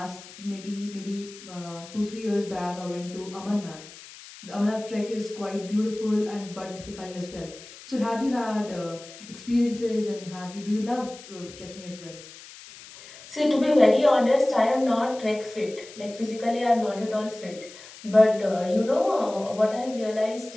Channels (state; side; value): noise; left; hiss, 17 dB below the sound